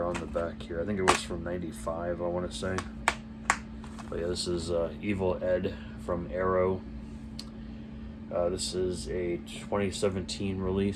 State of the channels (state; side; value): identical; both; correlation 1.00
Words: on the back here. I think it was from 95, I want to say. But yeah, this is Evil Ed from Arrow. This is a 2017